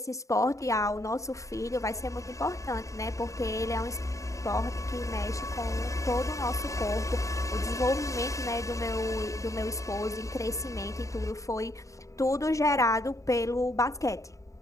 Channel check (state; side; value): late; right; 0.15 ms